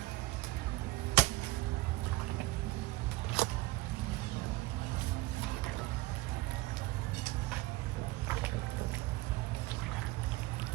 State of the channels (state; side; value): quieter; left; 19.8 dB